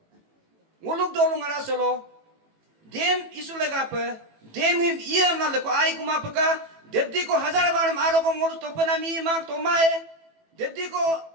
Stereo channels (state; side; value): late; left; 18 ms